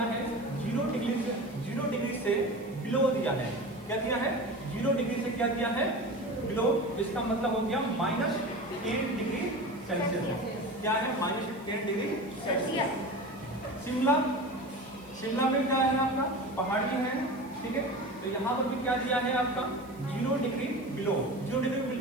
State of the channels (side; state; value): right; noise; hiss, 26 dB below the sound